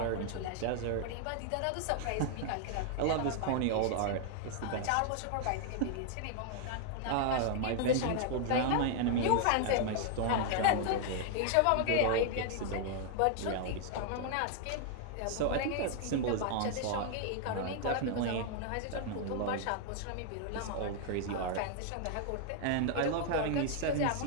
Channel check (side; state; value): both; different; correlation 0.00